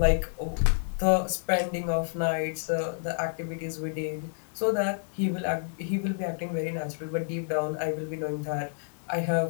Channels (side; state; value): right; silent; digital silence